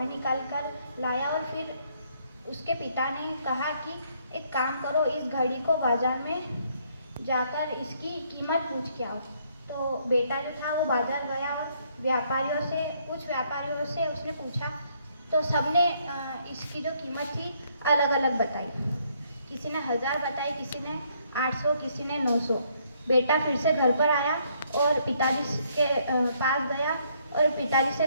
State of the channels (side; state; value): both; inverted; correlation -0.69